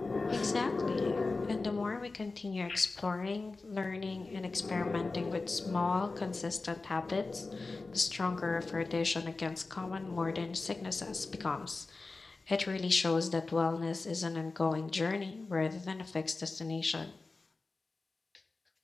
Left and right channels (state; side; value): quieter; right; 3.7 dB